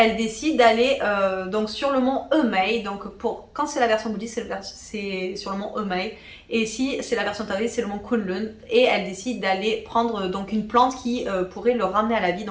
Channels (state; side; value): identical; both; correlation 1.00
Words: décide d'aller donc sur le mont Emei. Donc quand c'est la version bouddhiste, c'est sur le mont Emei. Et si c'est la version taoïste, c'est le mont Kunlun. Et elle décide d'aller prendre donc une plante qui pourrait le ramener à la vie.